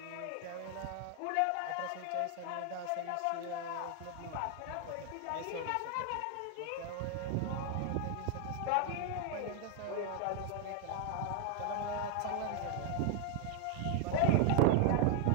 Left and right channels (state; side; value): different; both; correlation 0.00